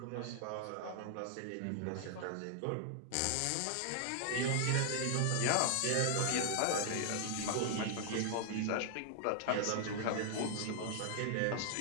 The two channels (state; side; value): different; both; correlation 0.00